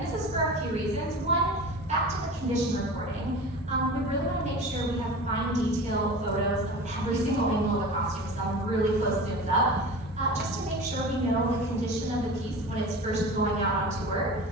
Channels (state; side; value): normal; both; correlation 0.34